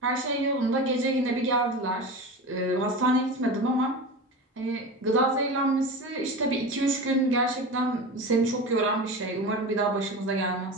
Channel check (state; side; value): normal; both; correlation 0.28